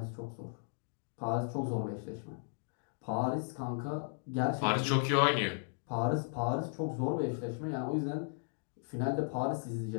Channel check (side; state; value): right; silent; digital silence